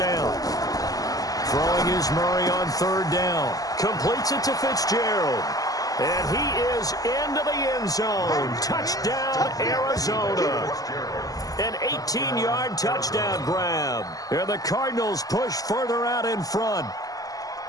Throwing is Murray on 3rd down. Completes it to Fitzgerald. And he is into the end zone. Touchdown, Arizona. An 18-yard touchdown grab. And the Cardinals push further out in front.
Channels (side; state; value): right; late; 0.17 ms